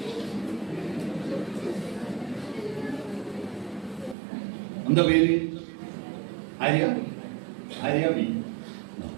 എന്താ പേര്? ആര്യ? ആര്യ ബി.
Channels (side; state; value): left; drops out; at 4.2 s